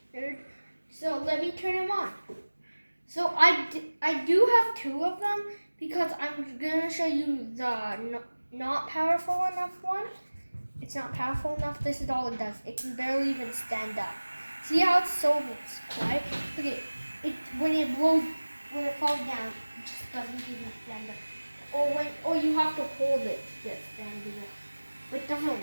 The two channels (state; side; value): inverted; both; correlation -1.00